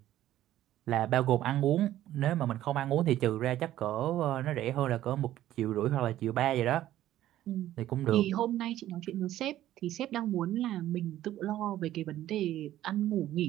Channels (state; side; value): quieter; left; 13.3 dB